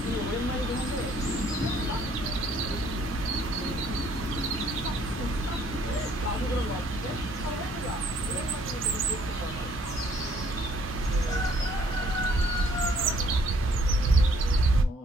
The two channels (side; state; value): both; normal; correlation 0.62